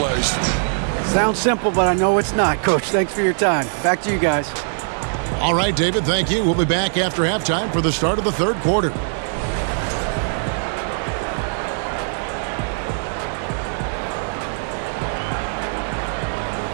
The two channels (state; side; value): silent; left; 65 dB below the other